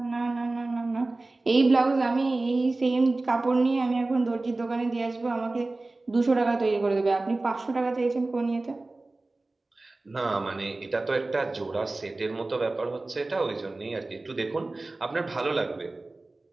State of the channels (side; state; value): left; quieter; 3.1 dB